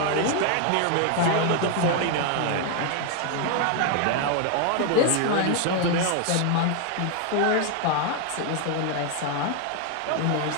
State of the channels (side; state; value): both; different; correlation 0.01